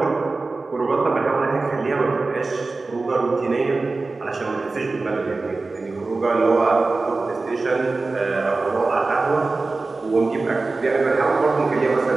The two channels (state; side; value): quieter; left; 3.6 dB